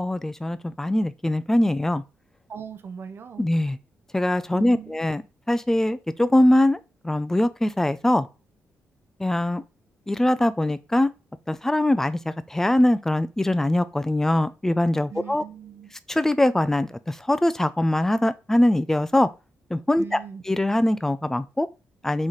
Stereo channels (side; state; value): both; normal; correlation 0.98